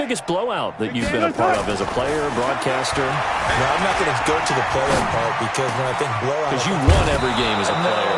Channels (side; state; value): both; identical; correlation 1.00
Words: blowout that you've been a part of as a player, broadcaster? No, I'm not going to go to the player part, because when I think blowout... Because you won every game as a player.